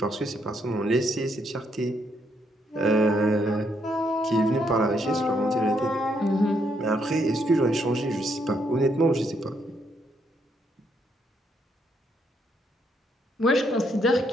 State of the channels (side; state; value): both; normal; correlation 0.75